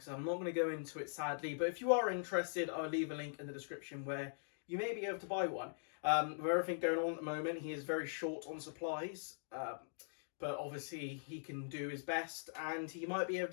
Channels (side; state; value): right; silent; digital silence